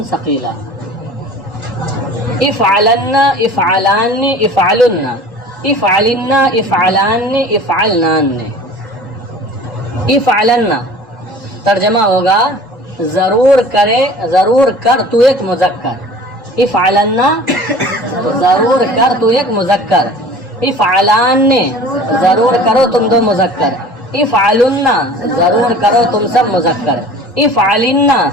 ثقیلہ، افعلن، افعلان، افعلن، افعلن، افعلان، افعلنان۔ افعلن ترجمہ ہوگا ضرور کرے، ضرور کر تو ایک مذکر، افعلن ضرور کر تو ایک مذکر، افعلان ضرور کرو تم دو مذکر، افعلن ضرور کرو تم سب مذکر، افعلن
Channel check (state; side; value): normal; both; correlation 0.43